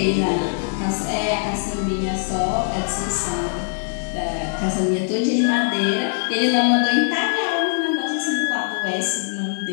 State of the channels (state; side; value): silent; right; digital silence